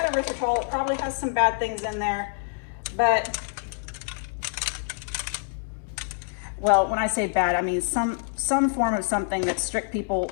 erythritol. It probably has some bad things in there, but, well, when I say bad, I mean some form of something that strict people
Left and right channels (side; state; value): right; silent; digital silence